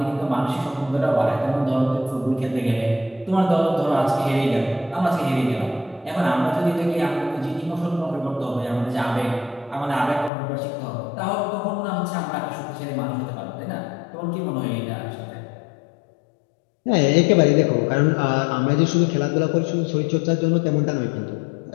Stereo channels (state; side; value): drops out; right; at 10.3 s